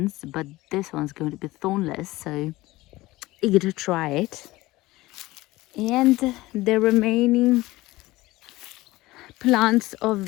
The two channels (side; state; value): right; quieter; 19.0 dB